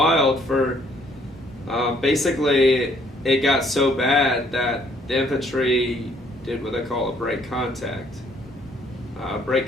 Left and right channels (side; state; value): both; normal; correlation 0.64